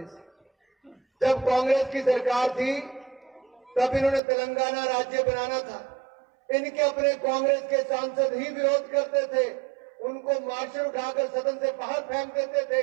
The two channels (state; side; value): drops out; left; at 4.2 s